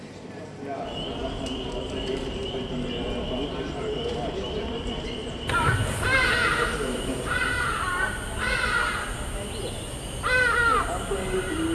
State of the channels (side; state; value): both; identical; correlation 1.00